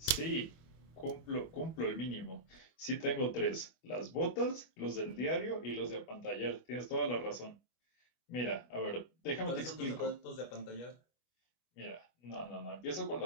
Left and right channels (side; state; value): right; late; 25 ms